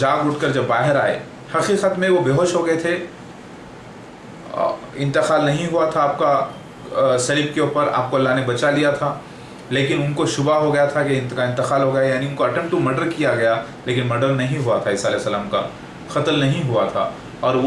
اٹھ کر جب باہر آئے، حقیقت میں وہ بے ہوش ہو گئے تھے، انتقال نہیں ہوا تھا آپ کا صلیب کے اوپر، آپ کو اللہ نے بچا لیا تھا، لیکن ان کو شبہ ہو گیا تھا کہ ان کا انتقال ہو گیا، یعنی ان کو اٹمپٹ ٹو مرڈر کیا گیا، لیکن مرڈر نہیں ہوا تھا، عیسیٰ علیہ السلام کا قتل نہیں ہوا تھا، اور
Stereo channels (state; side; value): identical; both; correlation 1.00